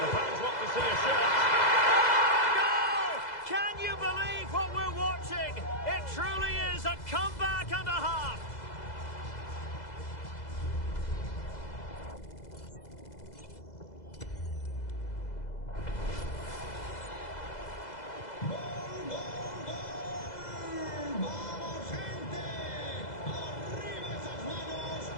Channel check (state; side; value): late; right; 2.0 ms